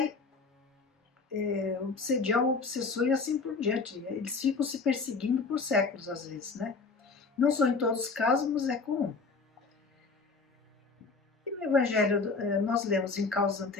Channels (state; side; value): quieter; right; 4.3 dB